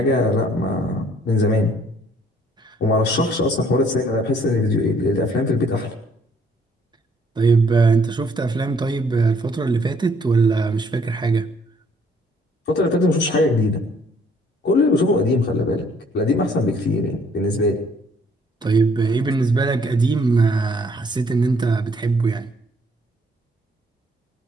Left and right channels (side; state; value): both; normal; correlation 0.63